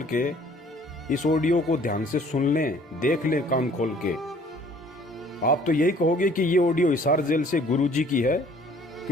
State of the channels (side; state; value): both; normal; correlation 0.56